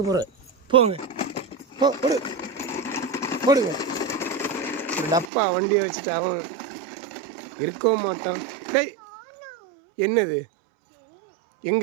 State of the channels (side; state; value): left; drops out; at 5.2 s